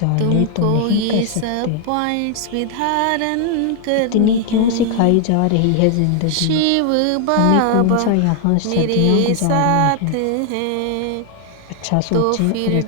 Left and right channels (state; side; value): different; both; correlation 0.00